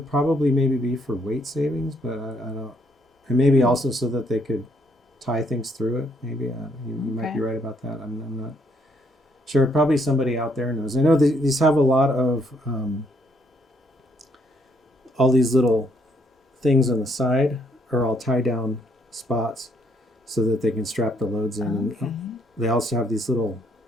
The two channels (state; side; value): normal; both; correlation 0.70